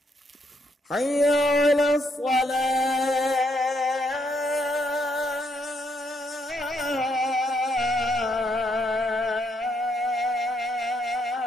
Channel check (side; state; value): both; normal; correlation 0.75